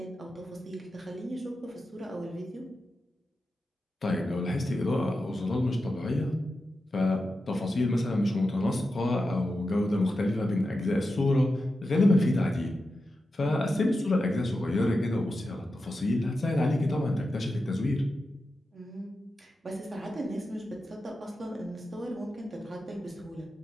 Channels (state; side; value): normal; both; correlation 0.90